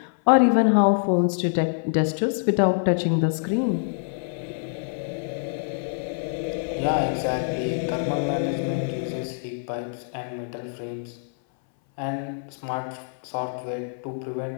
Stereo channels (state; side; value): silent; right; 60 dB below the other